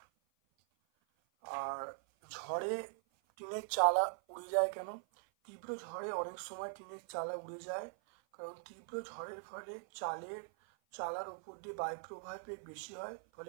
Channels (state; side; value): silent; left; 50 dB below the other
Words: আর ঝড়ে টিনের চালা উড়ে যায় কেন? তীব্র ঝড়ে অনেক সময় টিনের চালা উড়ে যায়, কারণ তীব্র ঝড়ের ফলে চালার উপর দিয়ে বায়ু প্রবাহের বেগ বেশি হয়,